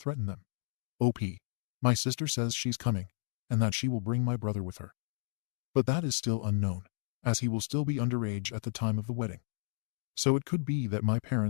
them? OP. My sister says she's coming, and that she will bring my brother with her. But that is still unknown, as he will still be underage at the time of the wedding. So it could be that my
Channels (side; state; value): right; silent; digital silence